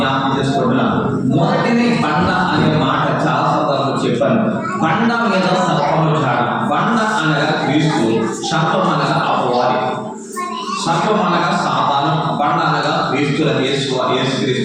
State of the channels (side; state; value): both; identical; correlation 1.00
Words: చేసుకుంటున్నాం. మొదటిది బండ అనే మాట చాలా సందర్భంలో చెప్పాను. బండ మీద సర్పము జాడ. బండ అనగా క్రీస్తు, సర్పం అనగా అపవాది. సర్పం అనగా సాతాను, బండ అనగా క్రీస్తు,